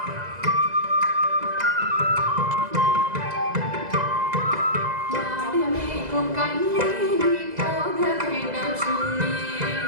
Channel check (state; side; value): late; left; 2.0 ms